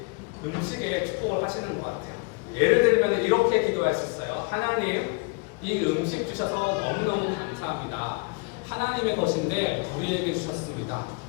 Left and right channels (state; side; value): quieter; right; 29.8 dB